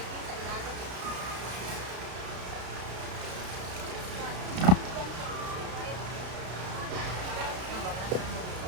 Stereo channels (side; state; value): left; late; 32 ms